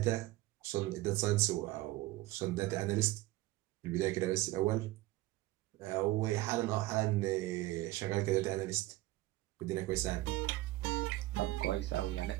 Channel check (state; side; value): quieter; left; 17.9 dB